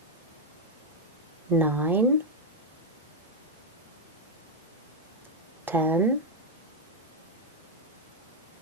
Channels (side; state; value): both; normal; correlation 0.02